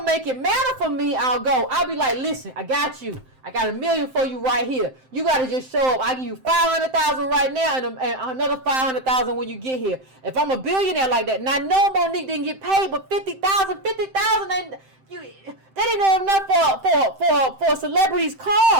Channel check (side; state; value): left; late; 7.7 ms